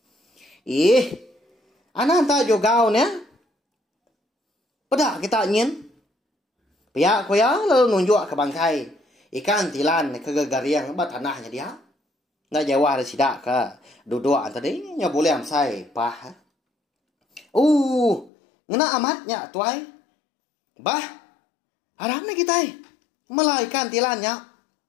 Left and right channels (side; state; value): right; drops out; at 18.3 s